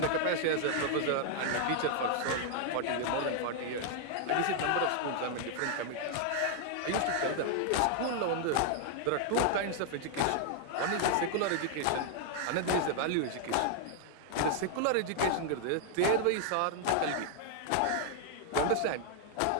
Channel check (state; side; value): different; both; correlation 0.00